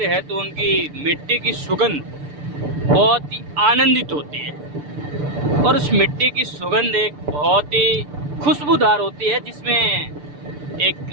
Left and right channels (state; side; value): late; left; 6.8 ms